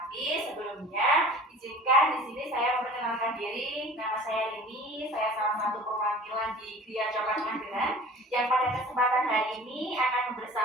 sebelumnya izinkan di sini saya memperkenalkan diri. Nama saya Rini, saya salah satu perwakilan di Gria Coklat Mageran yang pada kesempatan hari ini akan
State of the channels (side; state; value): both; normal; correlation 0.43